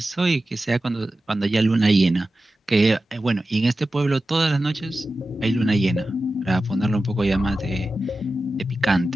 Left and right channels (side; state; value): both; normal; correlation 0.94